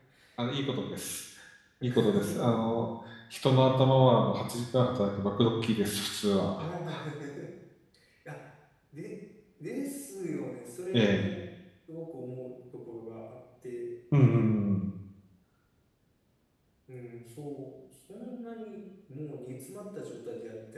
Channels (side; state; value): both; identical; correlation 1.00